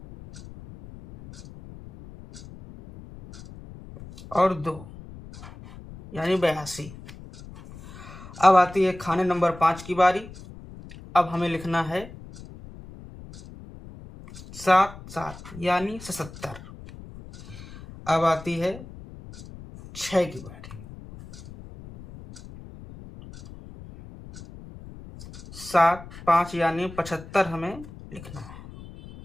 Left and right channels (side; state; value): left; noise; rumble, 16 dB below the sound